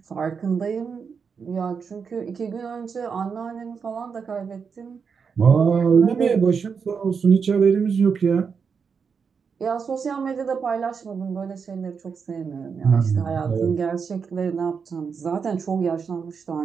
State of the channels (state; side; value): quieter; left; 6.0 dB